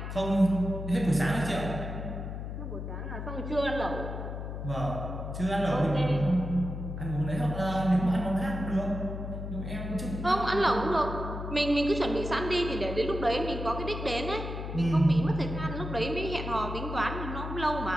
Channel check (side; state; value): left; noise; hum, 6 dB below the sound